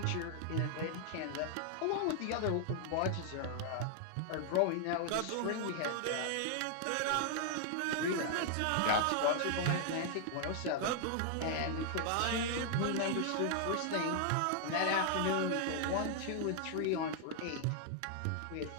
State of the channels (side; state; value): both; different; correlation 0.00